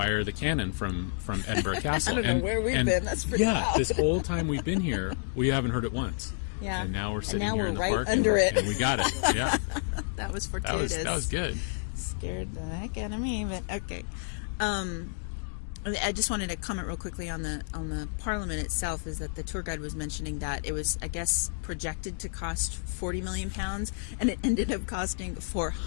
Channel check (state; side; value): silent; right; digital silence